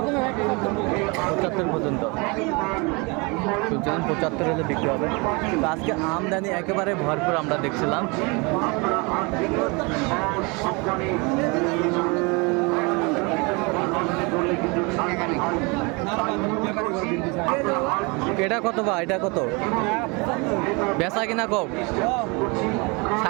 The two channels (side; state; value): left; quieter; 28.9 dB